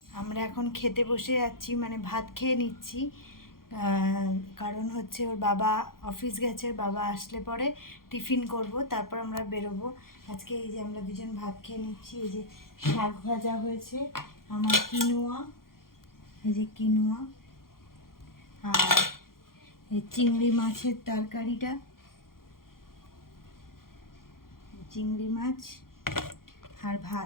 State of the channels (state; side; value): late; right; 0.92 ms